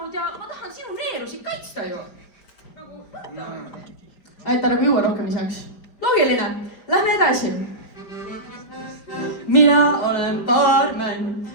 ja ma tahan sinu neerusid kaitsta ju. Aitäh, nagu juua rohkem isaks. Loogiline, lähme edasi. Mina olen baarman,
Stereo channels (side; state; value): right; late; 5.0 ms